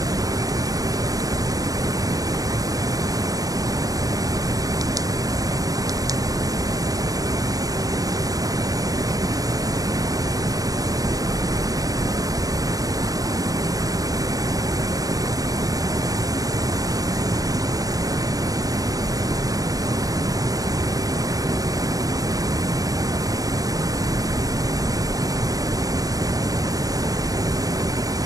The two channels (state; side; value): late; left; 0.17 ms